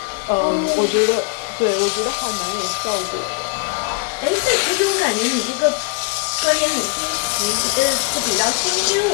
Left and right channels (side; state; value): right; quieter; 31.3 dB